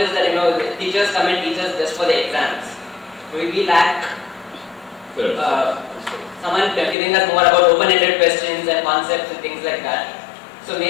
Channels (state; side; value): drops out; right; at 7.0 s